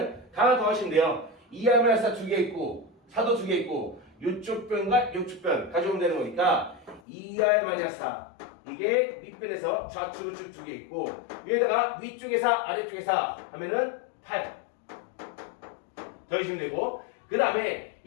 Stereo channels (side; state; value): right; drops out; at 7.0 s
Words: 다 더하시면 돼요. 2R-4 두 개 있고 4도 두 개 있고 요쪽 변과 요쪽 변 가져오면 되는 거니까 2R-4 이게 밑변에서 좌측 우측 두 개 있고 위에다가 위쪽에 4 아래쪽에 4 하면은 8 더해주면 되고 그 다음에